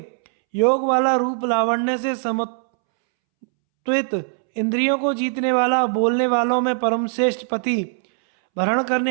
योग वाला रूप लावण्य से समत्वित, इंद्रियों को जीतने वाला, बोलने वालों में परम श्रेष्ठ पति, भरण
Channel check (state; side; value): silent; left; 65 dB below the other